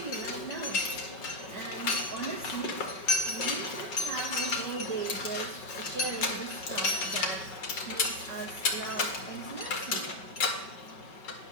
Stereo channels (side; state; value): right; late; 5.2 ms